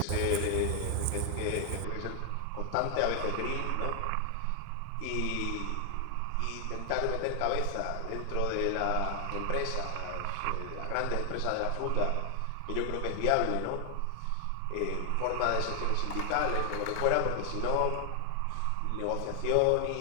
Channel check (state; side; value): different; both; correlation 0.00